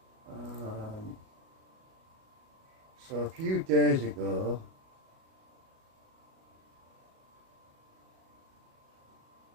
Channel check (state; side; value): late; left; 37 ms